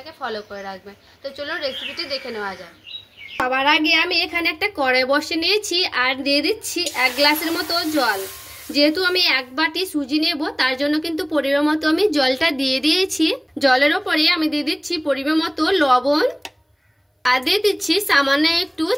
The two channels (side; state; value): both; identical; correlation 1.00